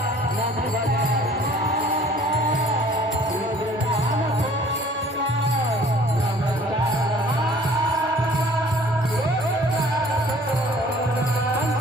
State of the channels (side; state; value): both; normal; correlation 0.52